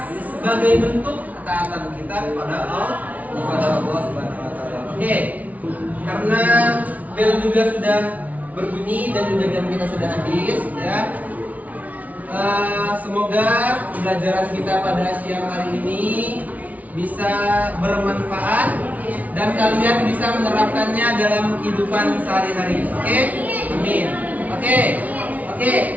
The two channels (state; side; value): late; left; 0.072 ms